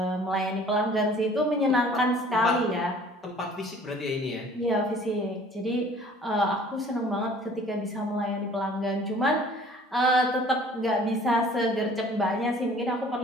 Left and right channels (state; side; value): normal; both; correlation 0.52